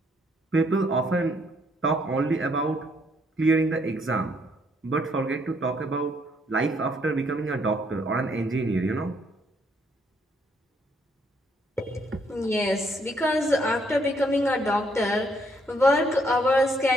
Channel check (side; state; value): both; normal; correlation 0.70